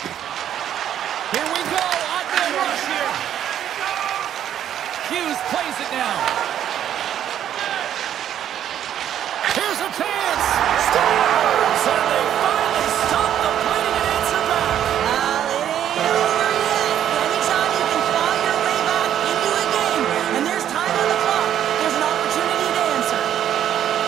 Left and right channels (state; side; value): quieter; left; 10.4 dB